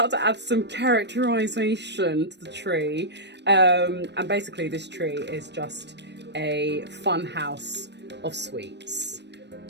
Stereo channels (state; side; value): late; left; 0.50 ms